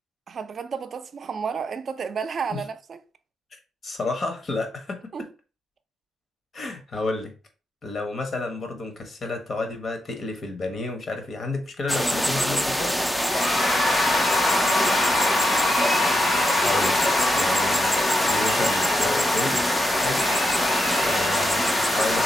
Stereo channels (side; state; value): both; normal; correlation 0.85